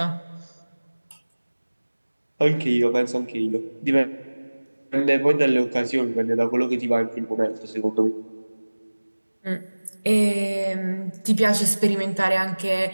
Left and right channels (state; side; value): inverted; both; correlation -1.00